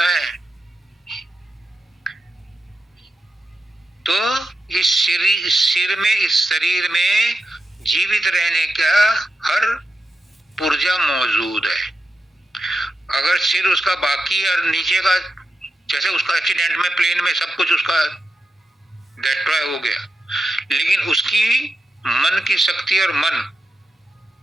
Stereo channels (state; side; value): normal; both; correlation 0.89